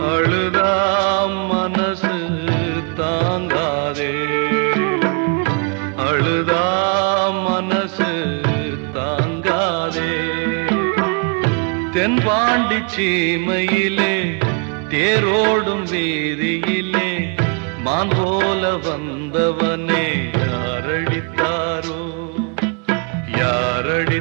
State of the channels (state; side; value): quieter; left; 36.4 dB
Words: அழுதா மனசு தாங்காதே அழுதா மனசு தாங்காதே தென்பாண்டி சீமையிலே தேரோடும் வீதியிலே மான் போல வந்தவனே யாரடித்தாரோ